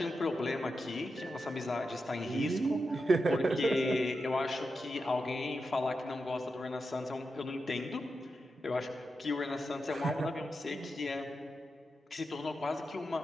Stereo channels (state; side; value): normal; both; correlation 0.88